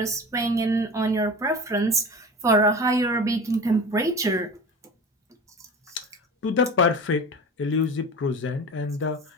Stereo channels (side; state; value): both; normal; correlation 0.34